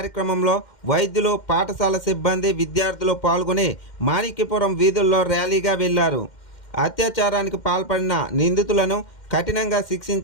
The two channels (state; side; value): late; right; 2.1 ms